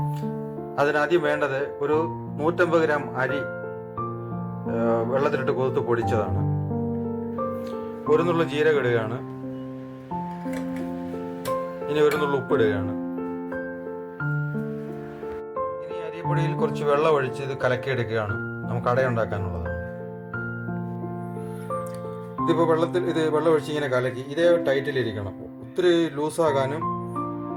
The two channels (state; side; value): identical; both; correlation 1.00